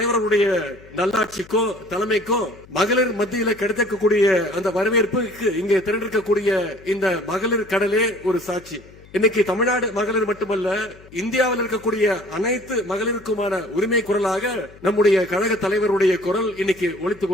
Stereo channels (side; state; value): left; noise; hum, 23 dB below the sound